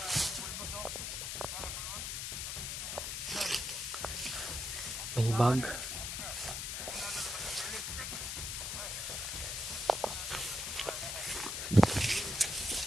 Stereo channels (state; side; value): noise; left; hiss, 3 dB below the sound